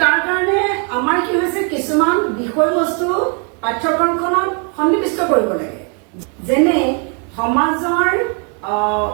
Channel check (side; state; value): left; quieter; 37.8 dB